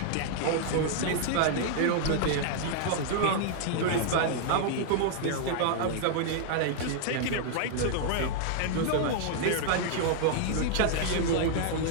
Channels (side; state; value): both; different; correlation -0.01